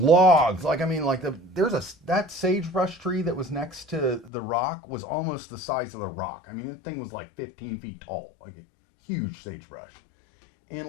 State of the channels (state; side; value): drops out; right; at 4.3 s